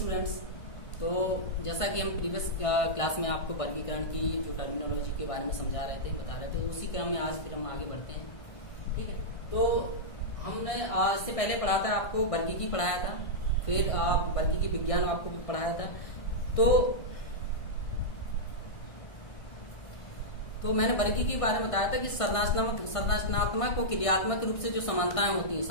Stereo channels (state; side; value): late; right; 1.6 ms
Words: तो जैसा कि हम प्रीवियस क्लास में आपको वर्गीकरण की जो टर्मिनोलॉजी के बारे में समझा रहे थे, बता रहे थे, उसी क्रम में आज फिर हम आगे बढ़ते हैं। ठीक है, तो हमने इससे पहले पढ़ा था, आपको वर्गीकी पढ़ाया था, फिर वर्गीकी विज्ञान आपको भी पढ़ाया था। तो मैंने वर्गीकी के बारे में बताया था कि संरचनात्मक और क्रियात्मक रूप से जो समानताएं होती हैं,